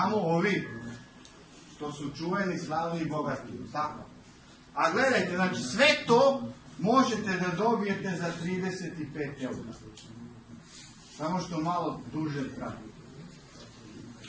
ovi što su čuveni, slavni i bogati. Tako. A gledajte, znači sve to možete da dobijete za 35 eura. Samo što malo duže traje.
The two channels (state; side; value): identical; both; correlation 1.00